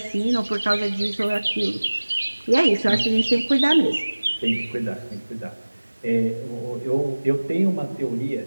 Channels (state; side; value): inverted; both; correlation -1.00